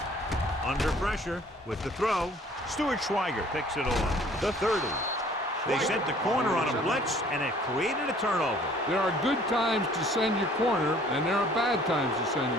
Under pressure with the throw. Stuart Schweiger picks it off. The 30. They sent the corner on a blitz, and it created a turnover. There are good times to send your corner, and there are bad times to send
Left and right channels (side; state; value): both; normal; correlation 0.55